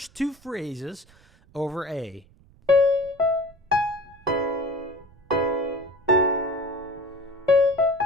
two phrases over A.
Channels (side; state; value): right; noise; rumble, 28 dB below the sound